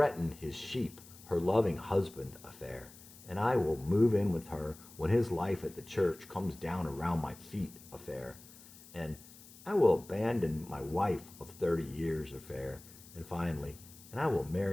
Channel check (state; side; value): noise; left; hiss, 20 dB below the sound